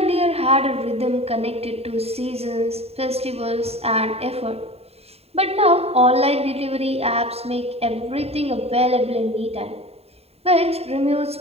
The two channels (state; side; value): late; left; 0.29 ms